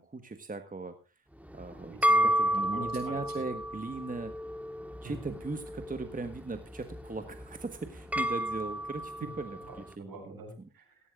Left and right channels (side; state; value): both; normal; correlation 0.74